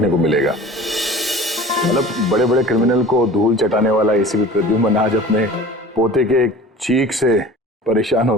को मिलेगा। मतलब बड़े बड़े क्रिमिनल को धूल चटाने वाला एसीपी प्रद्युम्न आज अपने पोते के एक चीख से परेशान हो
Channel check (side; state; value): both; normal; correlation 0.41